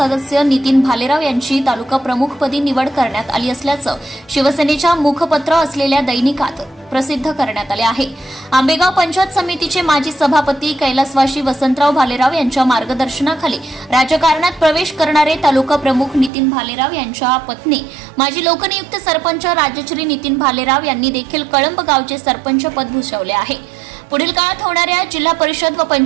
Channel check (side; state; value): left; drops out; at 16.3 s